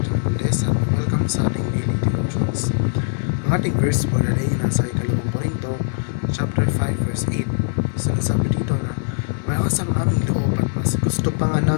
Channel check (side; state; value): right; silent; 63 dB below the other